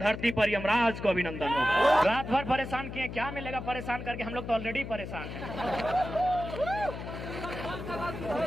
पर यमराज को अभिनंदन होगा। रात भर परेशान किए, क्या मिलेगा परेशान करके, हम लोग तो ऑलरेडी परेशान हैं।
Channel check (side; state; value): left; noise; hum, 8 dB below the sound